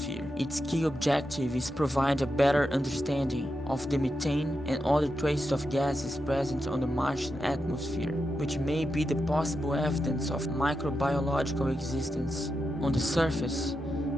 Its key objective is provide a better understanding of the methane and other traces of gases present on the Martian atmosphere, which may be the possible evidence of microbiological existence. On the surface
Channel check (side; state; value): both; normal; correlation 0.87